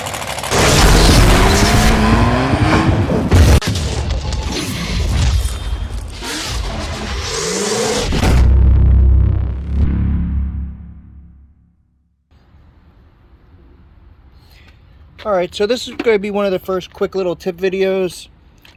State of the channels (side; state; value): both; identical; correlation 1.00